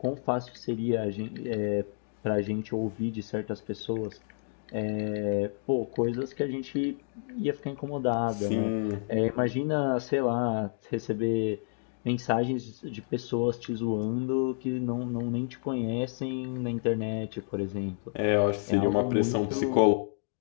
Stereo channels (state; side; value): silent; right; digital silence